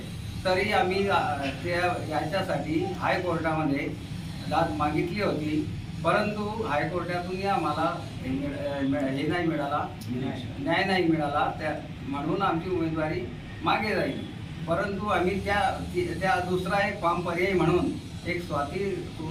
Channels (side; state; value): both; identical; correlation 1.00